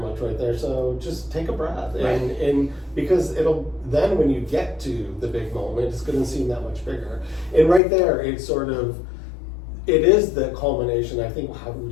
right there. So just take a breath, and because then when you get to the big moment, it's going to seem that much bigger. And right there, it is the culmination. I think, do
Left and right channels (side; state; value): right; drops out; at 7.8 s